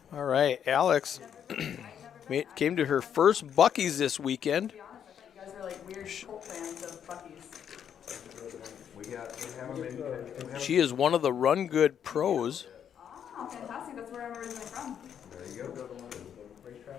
All right, Alex came to her first Buc-ee's this weekend. To be honest, I thought you guys were like weird cult fans of Buc-ee's. She is one of the RunGood pros. Oh, fantastic. That's where I'm originally from. There you go.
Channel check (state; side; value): quieter; right; 8.7 dB